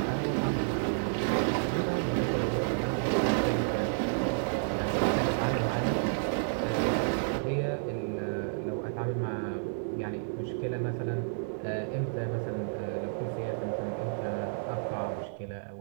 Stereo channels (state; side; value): silent; left; digital silence